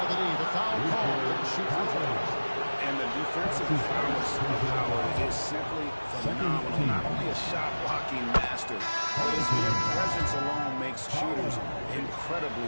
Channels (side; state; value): both; inverted; correlation -1.00